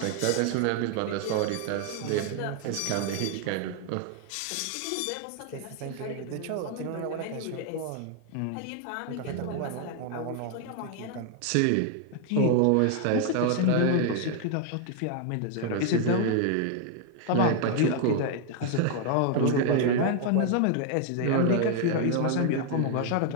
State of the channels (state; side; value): different; both; correlation 0.00